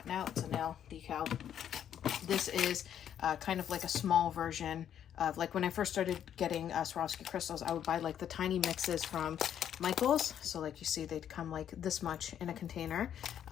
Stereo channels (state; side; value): quieter; right; 9.6 dB